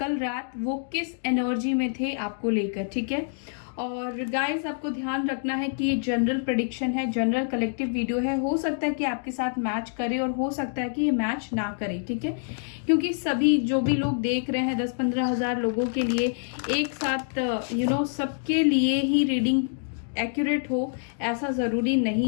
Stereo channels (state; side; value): silent; right; digital silence